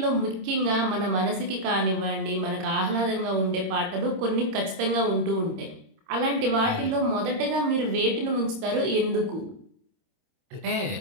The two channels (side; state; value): left; late; 27 ms